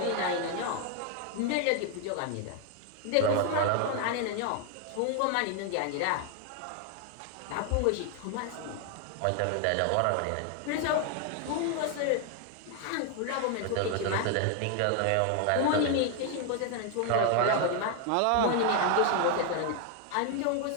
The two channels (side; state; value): both; different; correlation 0.00